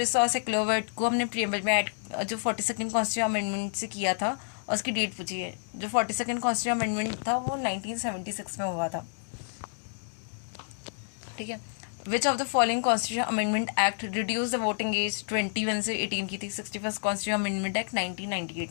और सेक्युलर वर्ड को हमने प्रीएम्बल में ऐड जो 42nd कॉन्स्टिट्यूशन अमेंडमेंट से किया था, और उसकी डेट पूछी है। जो 42nd कॉन्स्टिट्यूशन अमेंडमेंट था वो 1976 में हुआ था। ठीक है, which of the following constitution amendment act reduce the voting age 21 से 18 की थी। 61st कॉन्स्टिट्यूशन अमेंडमेंट एक्ट 1998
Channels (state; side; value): silent; right; 58 dB below the other